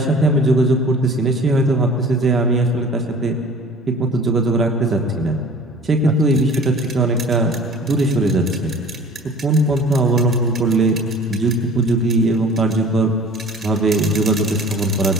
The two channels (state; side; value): normal; both; correlation 0.45